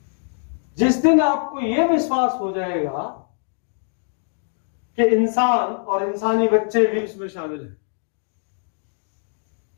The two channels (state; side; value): silent; right; digital silence